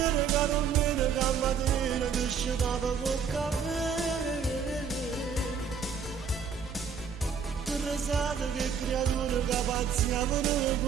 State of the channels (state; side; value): quieter; left; 6.6 dB